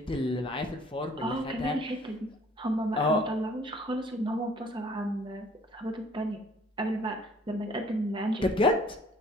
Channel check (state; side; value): normal; both; correlation 0.56